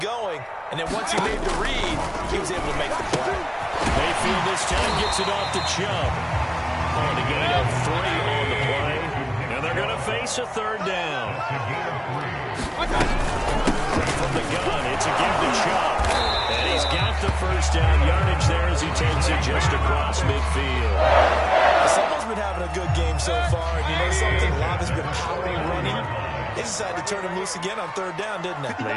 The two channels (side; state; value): both; identical; correlation 1.00